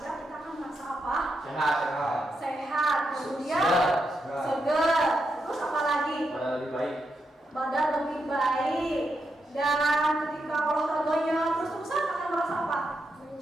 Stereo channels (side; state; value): both; normal; correlation 0.84